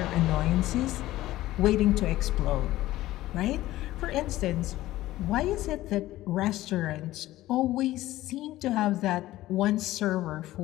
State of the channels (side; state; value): right; quieter; 15.9 dB